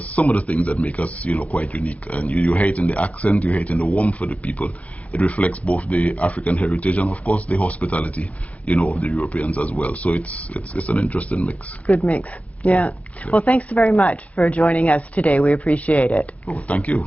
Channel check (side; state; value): right; late; 0.067 ms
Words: some of the things that make us, you know, quite unique. And you hear it in the accent, you hear it in the warmth of the people. It reflects both the African heritage and, of course, the hospitality, you know, of the Europeans as well. So it's an interesting mix. Good mix. Yeah. Well, thanks very much for joining us today. We appreciate it. Oh, thank you.